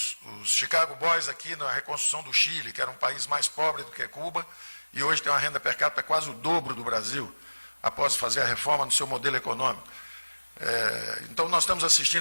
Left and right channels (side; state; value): both; inverted; correlation -1.00